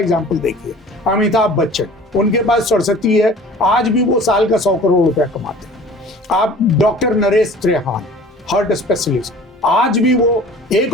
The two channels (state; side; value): normal; both; correlation 0.46